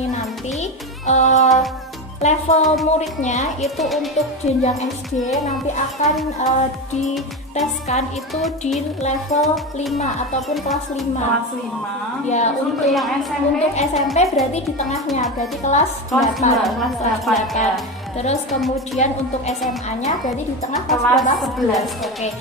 nanti level muridnya itu untuk jenjang SD nanti akan diteskan itu di level 5 ataupun kelas 5. Ya, untuk yang SMP berarti di tengahnya, berarti kelas 8. Terus kemudian untuk SMA-nya berarti di tengah kelas 11. Oke.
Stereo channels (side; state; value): both; normal; correlation 0.19